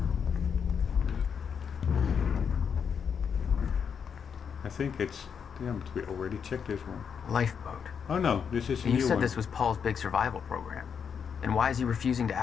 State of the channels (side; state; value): right; quieter; 6.9 dB